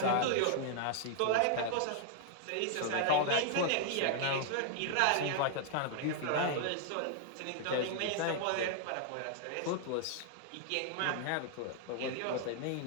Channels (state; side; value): different; both; correlation -0.01